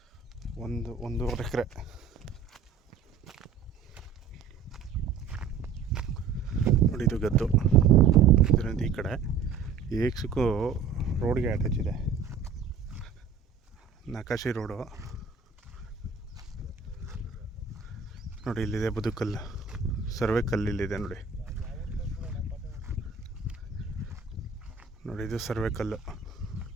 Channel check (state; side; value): quieter; left; 6.1 dB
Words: ಒಂದೂವರೆ ಎಕರೆ. ನೋಡಿ ಇದು ಗದ್ದು. ಇದರಿಂದ ಈ ಕಡೆ ಏಕ್ಸಕ್ಕೂ ರೋಡ್ಗೆ ಅಟ್ಯಾಚ್ ಇದೆ. ನಕಾಶಿ ರೋಡು ನೋಡಿ. ಇಲ್ಲಿದೆ ಬದುಕಲ್ಲು, ಸರ್ವೆ ಕಲ್ಲು ಇಲ್ಲಿದೆ ನೋಡಿ. ನೋಡಿ ಇದು ಸರ್ವೆ ಕಲ್ಲು